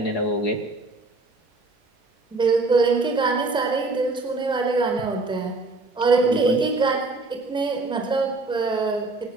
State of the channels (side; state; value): left; quieter; 3.3 dB